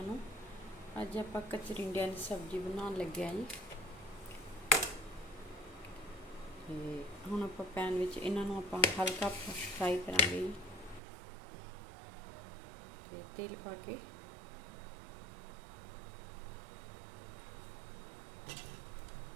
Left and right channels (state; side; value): drops out; left; at 11.0 s